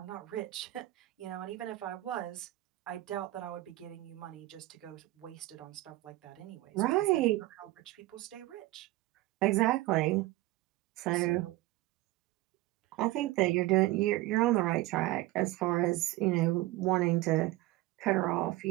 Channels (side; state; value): left; quieter; 17.8 dB